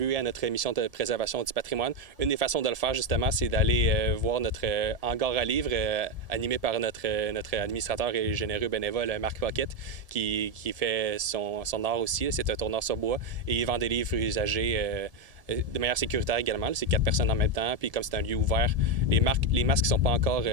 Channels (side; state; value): left; late; 1.7 ms